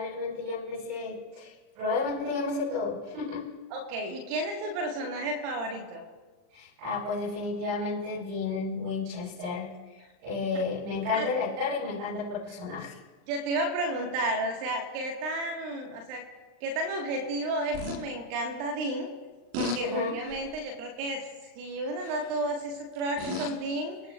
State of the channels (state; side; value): late; left; 39 ms